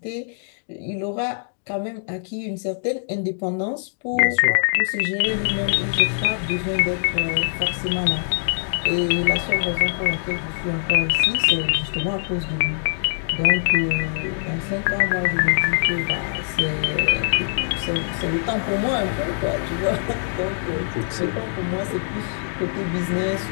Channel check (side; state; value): right; silent; digital silence